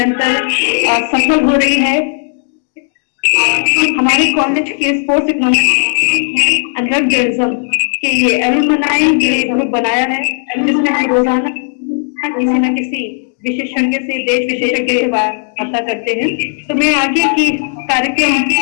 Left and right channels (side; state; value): right; silent; 65 dB below the other